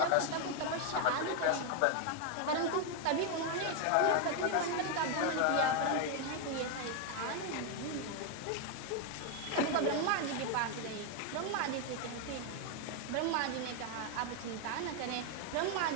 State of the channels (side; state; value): both; different; correlation 0.01